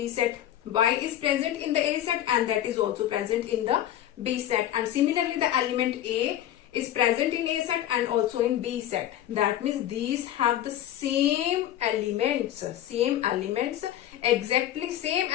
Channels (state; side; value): quieter; right; 12.2 dB